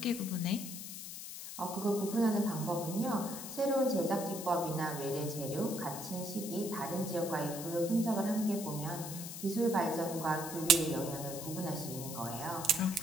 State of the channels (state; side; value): noise; left; hiss, 9 dB below the sound